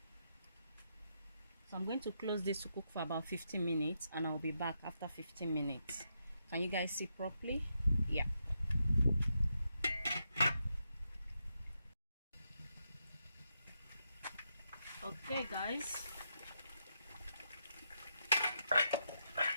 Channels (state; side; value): inverted; both; correlation -0.82